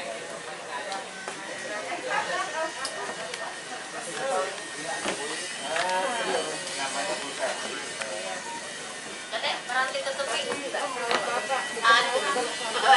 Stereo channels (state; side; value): identical; both; correlation 1.00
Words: Kadek, nanti tutupin.